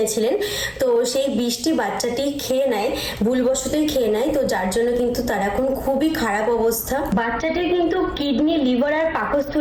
তো সেই বিষটি বাচ্চাটি খেয়ে নেয়, ভুলবশতই খেয়ে নেয়, তো যার জন্য কিন্তু তার এখন খুবই খারাপ অবস্থা। বাচ্চাটির কিন্তু কিডনি, লিভার আর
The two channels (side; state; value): both; identical; correlation 1.00